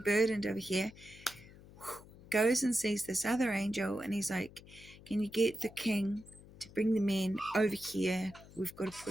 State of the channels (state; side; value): noise; left; hum, 20 dB below the sound